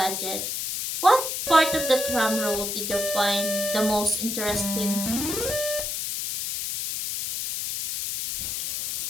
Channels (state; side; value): noise; left; hiss, 3 dB below the sound